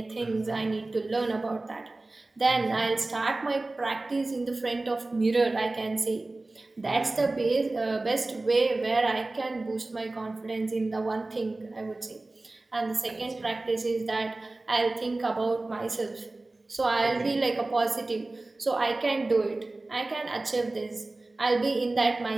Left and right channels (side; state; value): left; quieter; 3.0 dB